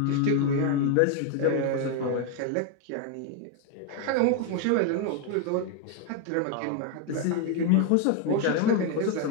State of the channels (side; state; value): both; different; correlation 0.01